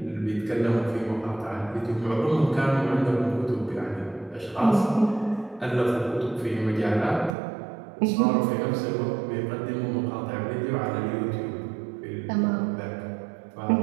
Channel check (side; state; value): left; drops out; at 7.4 s